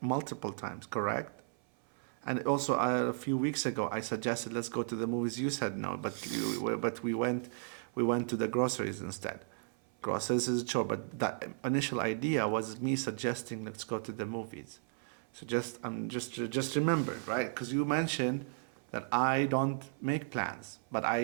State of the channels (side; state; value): left; silent; 55 dB below the other